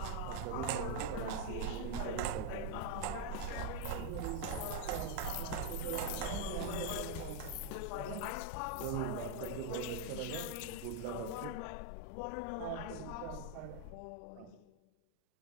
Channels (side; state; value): both; different; correlation 0.00